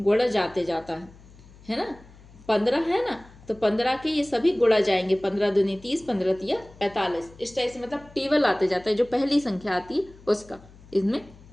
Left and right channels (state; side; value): noise; left; hum, 23 dB below the sound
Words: जाते जाता है ना। 15 है ना, तो 15 के ये सभी गुणा जाएंगे। 15 दूनी 30, 15 तिया 45। इस टाइप से मतलब टेबल आते जाता है, जो पहली संख्या आती है उसका इसमें